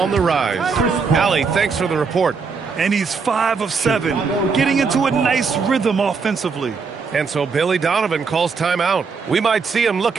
the rise. Allie, thanks for the report. And he's 5 of 7, getting into a nice rhythm offensively. And so Billy Donovan calls timeout. We might see him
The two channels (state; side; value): quieter; left; 5.2 dB